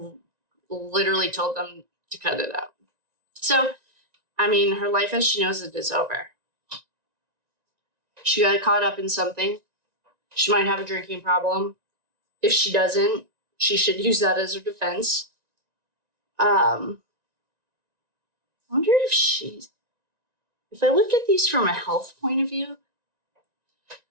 literally told them to cut it out. So, I mean, her life as she knows it is over. She got caught up in something. She might have a drinking problem. If she doesn't, she should use that as her defense. I wonder if I look at these from a health point of view,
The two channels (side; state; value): left; late; 1.9 ms